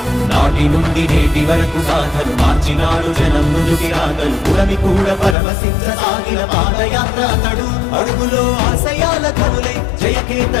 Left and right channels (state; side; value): drops out; right; at 5.4 s